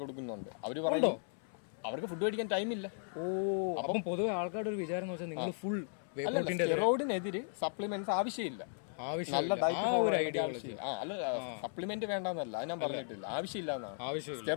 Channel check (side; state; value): right; silent; 54 dB below the other